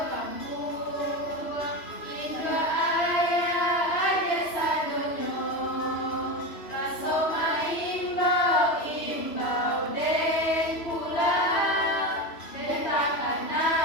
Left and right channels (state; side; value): late; right; 3.0 ms